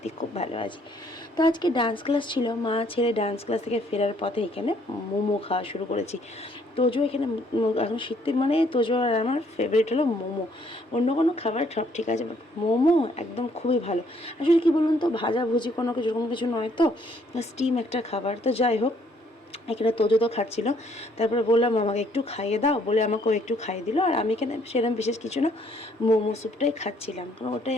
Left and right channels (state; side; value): normal; both; correlation 0.65